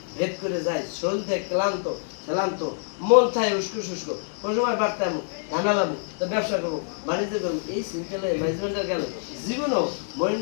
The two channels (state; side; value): silent; right; 60 dB below the other